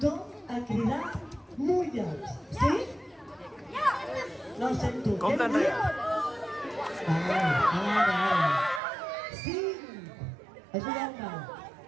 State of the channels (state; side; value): drops out; left; at 8.8 s